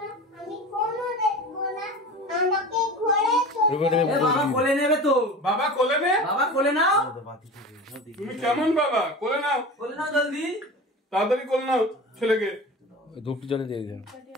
আমি ফোনও দেখবো না, আমাকে ঘরে বাবা কোলে নেবে তো। বাবা কোলে নে, বাবা কোলে নাও। তুমি কেমন বাবা? কোলে নাও, কোলে নাও জলদি। তাড়াতাড়ি কোলে নাও ছেলেকে। ধূপটি জলে দিয়ে দিও।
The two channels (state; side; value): normal; both; correlation 0.33